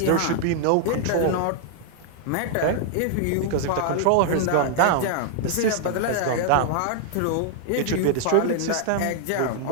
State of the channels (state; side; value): different; both; correlation 0.00